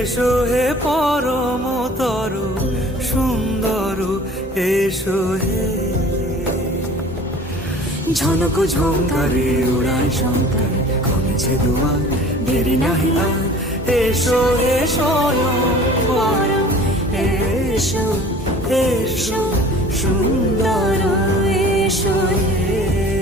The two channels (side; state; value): both; normal; correlation 0.46